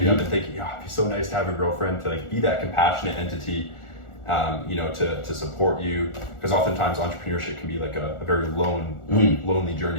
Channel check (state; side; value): late; right; 1.4 ms